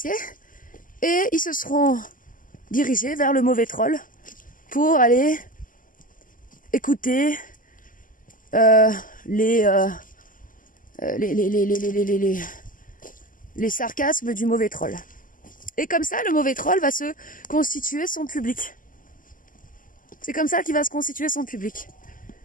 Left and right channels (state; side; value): late; right; 0.39 ms